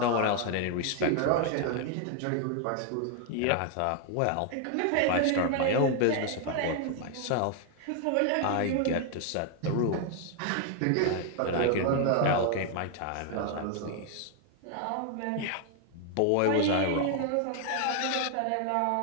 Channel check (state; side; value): different; both; correlation 0.00